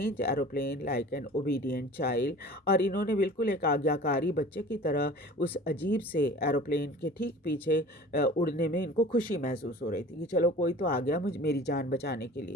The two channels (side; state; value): both; normal; correlation 0.42